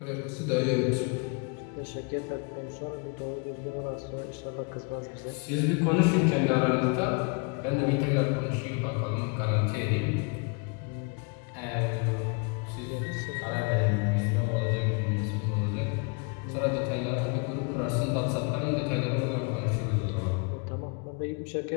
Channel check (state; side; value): quieter; right; 33.7 dB